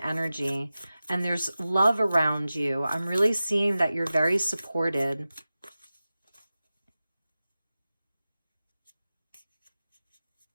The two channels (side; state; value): both; inverted; correlation -0.95